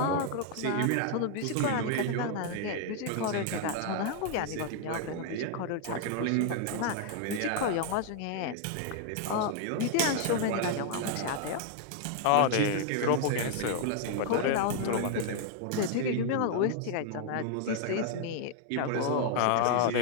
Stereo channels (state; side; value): different; both; correlation 0.00